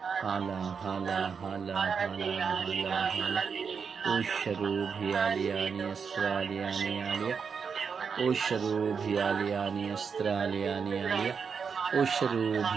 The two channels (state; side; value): quieter; left; 6.1 dB